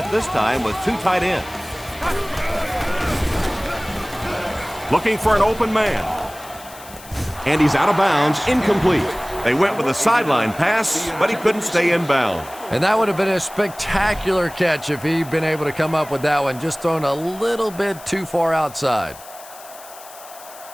this time with 2 tight ends. Looking for an open man. And he's out of bounds, incomplete. They went with a sideline pass, but he couldn't stay in bounds. And that would have been a spectacular catch if he'd been able to come up with that one, just thrown a little bit too far outside.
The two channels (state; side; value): noise; left; hiss, 18 dB below the sound